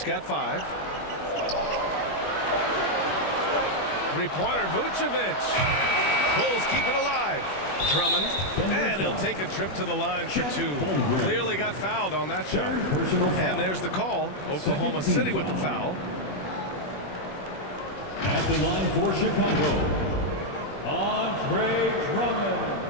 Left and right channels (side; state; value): right; late; 21 ms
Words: got 5. Three-pointer, Vucevic. Bulls keep it alive. Drummond, and he'll take a trip to the line for 2. Clearly got fouled on that shot. And there's the call. Oklahoma City with the foul. At the line for Chicago, Andre Drummond.